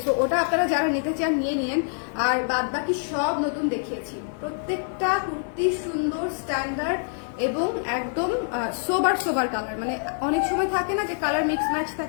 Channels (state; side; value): silent; right; 58 dB below the other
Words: সো ওটা আপনারা যারা নিতে চান নিয়ে নিন। আর বাদ বাকি সব নতুন দেখিয়েছি। প্রত্যেকটা কুর্তি সুন্দর, স্ট্যান্ডার্ড এবং একদম সোবার কালার। মানে অনেক সময় থাকে না যে কালার মিক্স ম্যাচ